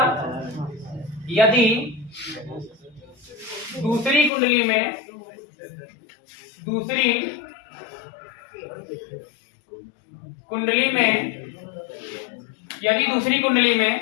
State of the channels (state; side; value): drops out; right; at 4.3 s